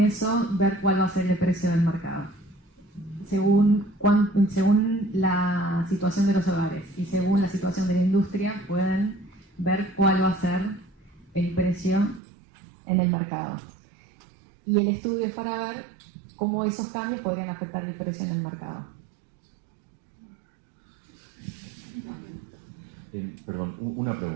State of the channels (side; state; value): left; drops out; at 12.2 s